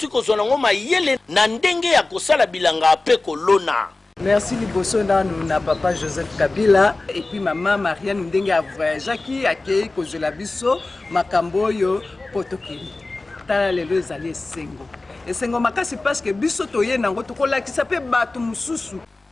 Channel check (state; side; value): quieter; right; 3.2 dB